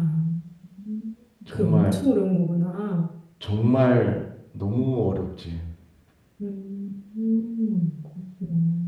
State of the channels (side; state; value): both; identical; correlation 1.00